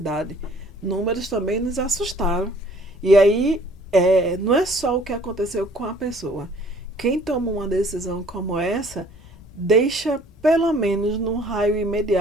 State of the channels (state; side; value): normal; both; correlation 0.55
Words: números também nos assustaram. E aí, não é só o que aconteceu com a pessoa. Quem toma uma decisão como essa, deixa pelo menos num raio